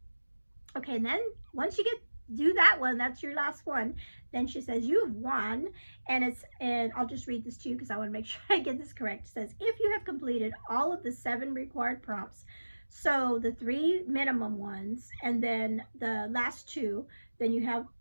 Okay, and then once you do that one, that's your last one, then she says you've won, and I'll just read this to you because I want to make sure I get this correct. It says, if you have completed all of the 7 required prompts, so the 3 minimum ones and then the last 2, then you have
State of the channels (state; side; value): inverted; both; correlation -1.00